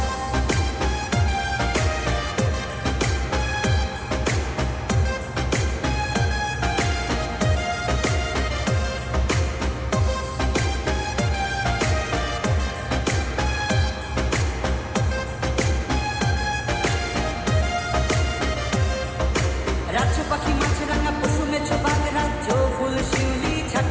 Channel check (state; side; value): identical; both; correlation 1.00